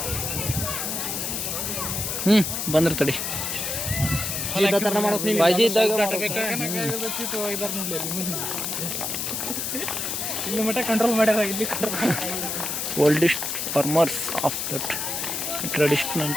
ಬಂದ್ರೆ ತಡಿ ಬಾಜಿ ಇದ್ದಾಗ ಇಲ್ಲಿ ಮಟ್ಟ ಕಂಟ್ರೋಲ್ ಮಾಡ್ಯಾರ. ಇಲ್ಲಿ oldest farmers of that traditional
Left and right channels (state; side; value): noise; left; hiss, 2 dB below the sound